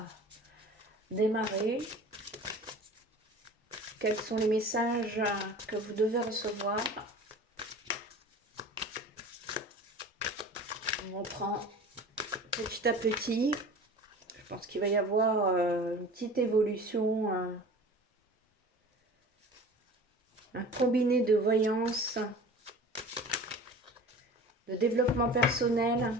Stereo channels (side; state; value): both; normal; correlation 0.40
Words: démarrer. Quels sont les messages que vous devez recevoir? On prend petit à petit. Je pense qu'il va y avoir une petite évolution, un combiné de voyance, de développement personnel